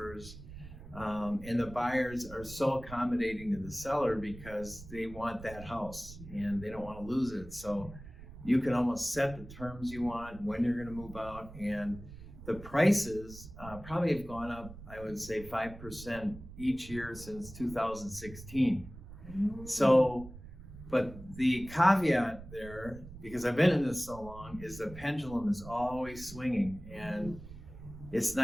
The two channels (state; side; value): noise; right; rumble, 15 dB below the sound